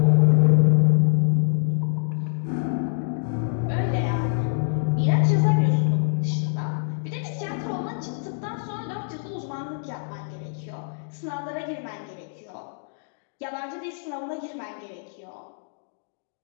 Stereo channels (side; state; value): right; silent; digital silence